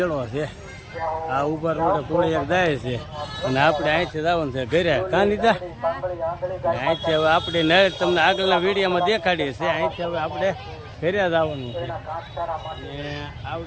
છે. આ ઉપર રોડે થોડી એક જાય છે અને આપણે અહીંથી જવાનું છે ઘરે. કાં લીધા અહીંથી હવે આપણે નળ તમને આગળના વિડીયોમાં દેખાડીએ છે. અહીંથી હવે આપણે ઘરે જવાનું છે.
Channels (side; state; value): both; identical; correlation 1.00